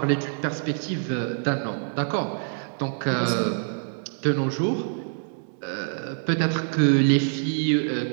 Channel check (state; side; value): silent; left; digital silence